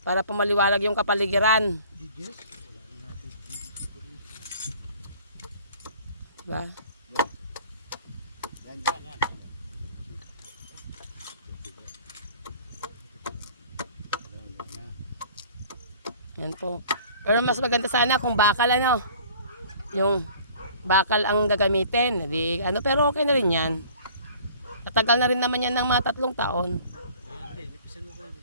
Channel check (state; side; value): inverted; both; correlation -0.50